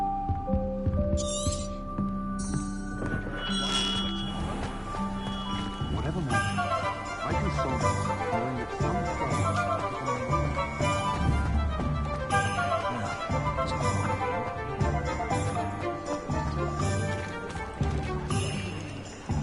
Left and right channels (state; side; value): identical; both; correlation 1.00